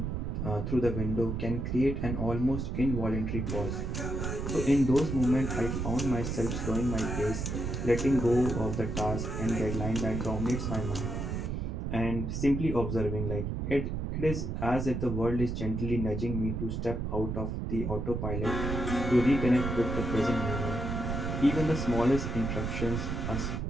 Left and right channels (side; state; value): right; noise; rumble, 2 dB below the sound